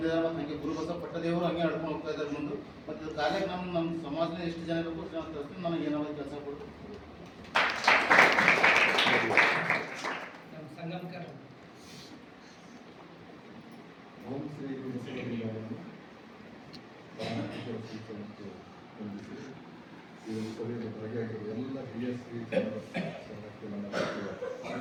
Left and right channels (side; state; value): both; identical; correlation 1.00